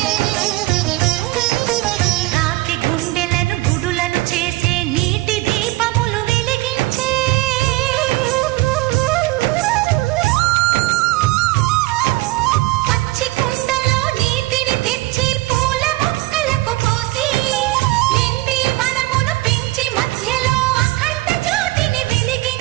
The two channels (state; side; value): quieter; left; 19.4 dB